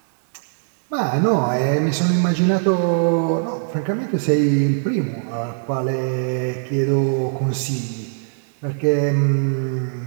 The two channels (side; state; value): left; silent; digital silence